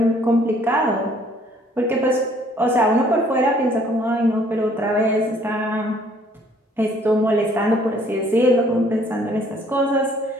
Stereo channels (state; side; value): normal; both; correlation 0.60